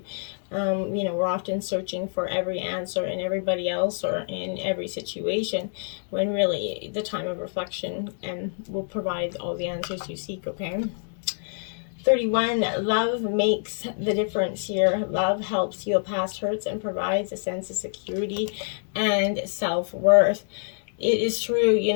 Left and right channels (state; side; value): silent; right; digital silence